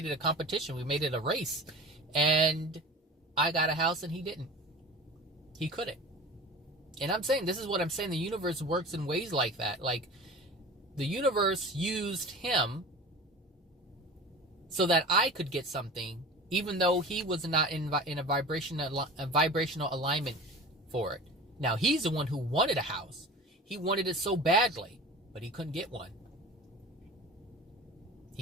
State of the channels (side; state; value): both; normal; correlation 0.36